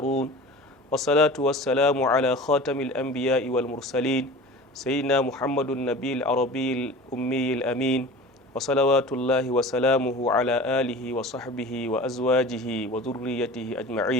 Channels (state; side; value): normal; both; correlation 0.38